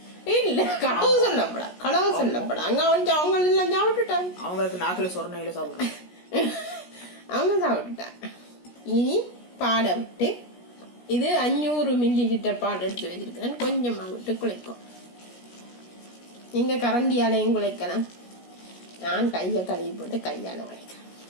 இல்ல, களவு சொல்லப்படா. அங்க அவங்க எல்லாம் சாப்பிட்டுட்டாங்க. அவங்களுக்கு நாக்குல சொரணையில சாப்பிடுறாங்க, அவங்க சாப்பிட்டுட்டாங்க. இனி பாலை விட்டு, இது 500 ml பால் எடுத்து வச்சிருக்கேன். கொஞ்சமா விட்டு குழைக்கும். நீங்க கரண்டியாலையும் குழைக்கலாம். நான் கையை கழுவி போட்டு கையால குழைக்கிறேன்.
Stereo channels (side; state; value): right; late; 17 ms